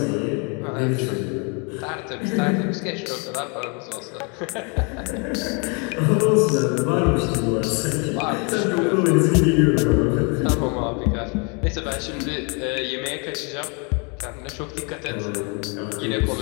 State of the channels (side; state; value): right; quieter; 34.0 dB